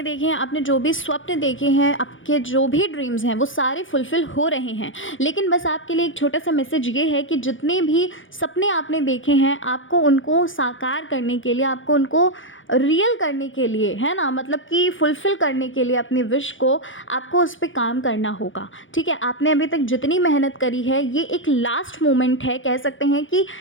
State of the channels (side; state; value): right; late; 0.57 ms